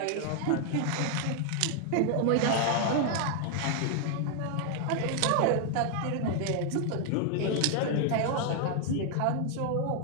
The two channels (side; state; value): both; different; correlation 0.00